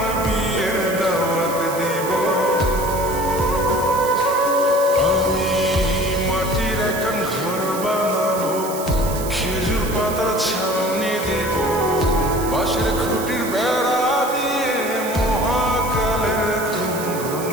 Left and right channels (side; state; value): right; noise; hiss, 11 dB below the sound